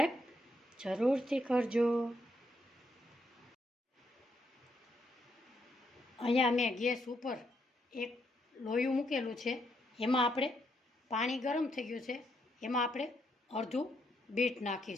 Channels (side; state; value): both; normal; correlation 0.76